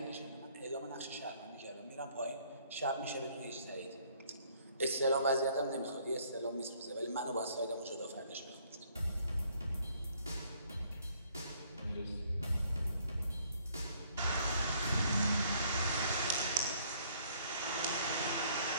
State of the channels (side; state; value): both; inverted; correlation -0.63